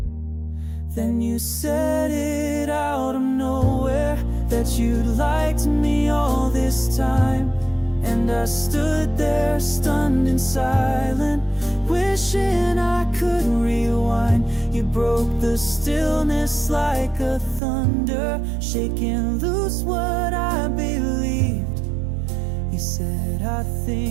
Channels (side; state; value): left; drops out; at 17.6 s